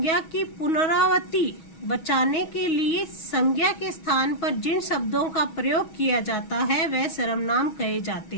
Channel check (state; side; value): late; right; 6.2 ms